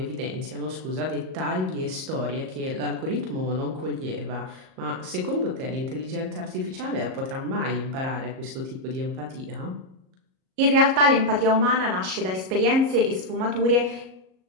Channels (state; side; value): late; left; 38 ms